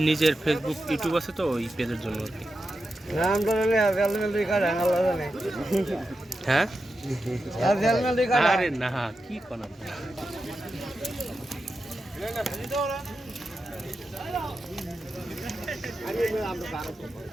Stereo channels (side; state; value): both; normal; correlation 0.90